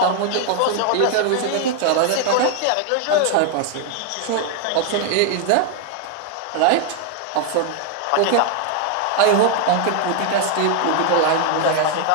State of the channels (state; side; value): different; both; correlation 0.00